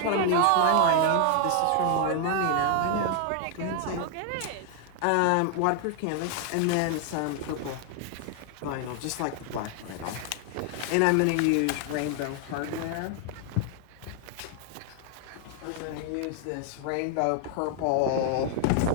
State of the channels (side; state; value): both; different; correlation 0.00